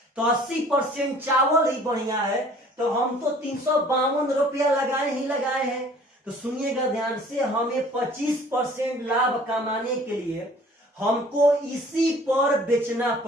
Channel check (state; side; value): normal; both; correlation 0.52